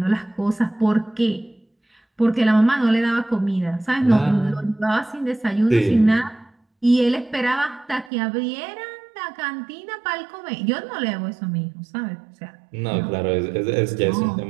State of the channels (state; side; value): drops out; left; at 8.1 s